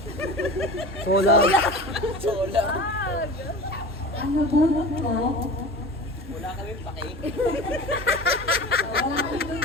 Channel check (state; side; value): normal; both; correlation 0.34